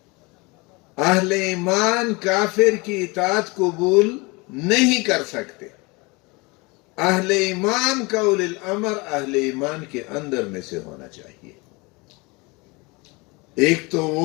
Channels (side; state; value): right; quieter; 26.2 dB